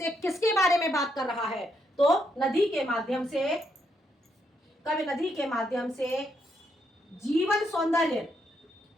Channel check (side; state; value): both; normal; correlation 0.77